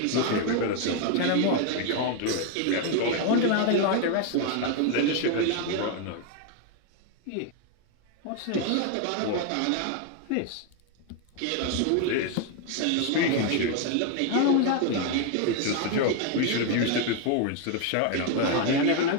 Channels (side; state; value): both; different; correlation 0.01